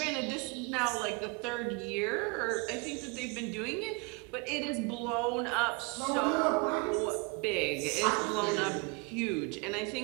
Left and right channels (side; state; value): left; quieter; 29.1 dB